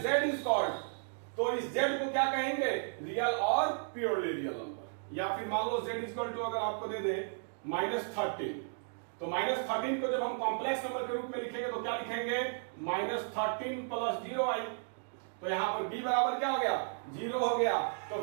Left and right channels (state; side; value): silent; left; digital silence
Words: z इज कॉल्ड, तो इस z को क्या कहेंगे, रियल और प्योरली रियल नंबर। या फिर मान लो z इज इक्वल टू अगर आपको दे दे -13, तो -13 को जब हम कॉम्प्लेक्स नंबर के रूप में लिखेंगे तो क्या लिखेंगे, -13 प्लस 0i, तो यहां पर b बराबर क्या हो गया, 0 हो गया, तो